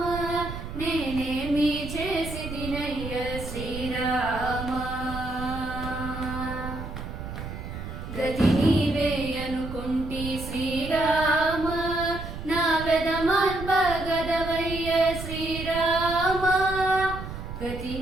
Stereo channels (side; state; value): right; noise; rumble, 8 dB below the sound